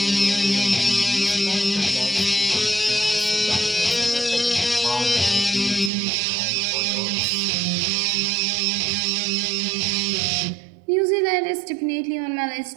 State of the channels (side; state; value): left; drops out; at 5.9 s